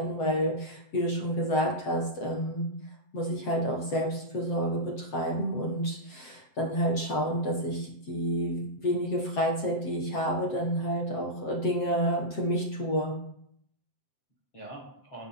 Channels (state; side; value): late; right; 7.7 ms